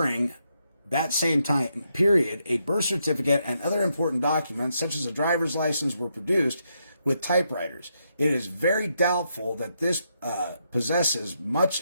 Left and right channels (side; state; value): both; inverted; correlation -0.80